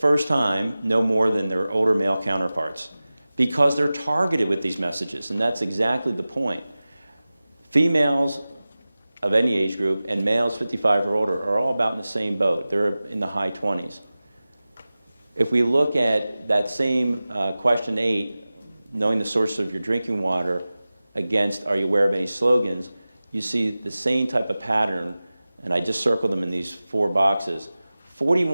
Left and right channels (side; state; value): both; inverted; correlation -0.97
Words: time, know more than their older male counterparts because they're targeted with these messages, and that's exactly the point. Females of any age group and males 55 or older are all about in the same boat. They're in the high 20s. If we look at that same question 8, knowing the source of your drinking water, against are you aware of any slogans, you see the same type of pattern, and I just circled them in these 4 boxes.